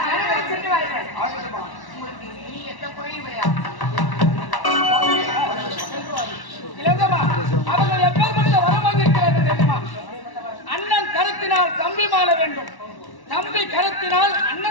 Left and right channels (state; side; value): late; right; 1.1 ms